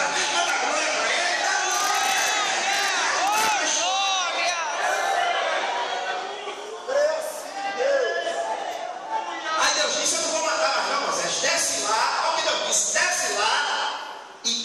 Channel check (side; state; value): both; identical; correlation 1.00